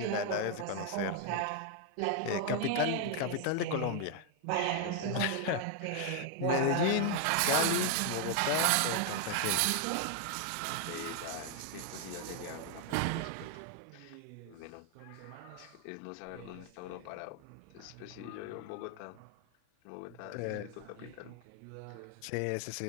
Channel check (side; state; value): both; different; correlation 0.00